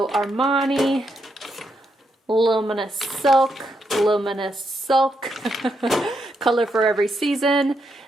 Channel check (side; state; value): both; normal; correlation 0.80